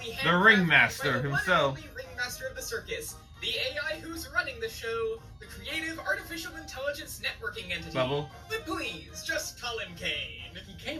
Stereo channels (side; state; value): both; identical; correlation 1.00